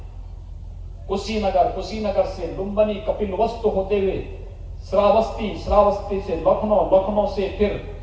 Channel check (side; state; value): both; identical; correlation 1.00